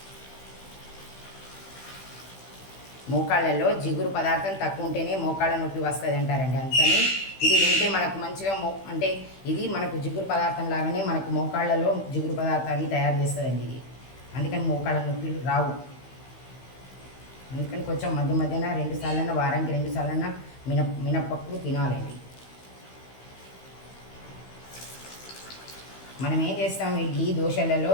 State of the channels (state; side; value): late; right; 16 ms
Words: మోకాళ్ళల్లో జిగురు పదార్థం తక్కువ ఉంటేనే మోకాళ్ళ నొప్పి వస్తుంది అంటారండి. అందుకని ఇది తింటే మనకు మంచిగా అంటే ఇది మనకు జిగురు పదార్థం లాగానే మనకు మోకాళ్ళలో జిగురు పదార్థాన్ని తయారు చేస్తుందండి ఇది. అందుకని మోకాళ్ళ నొప్పులు రావు. అందుకని కొంచెం మధ్య మధ్యన 2 సార్లన్నా, వారానికి 2 సార్లన్నా మినపప్పు తినాలండి. మనం ఏం చేస్తాం, ఇడ్లీ దోశలలో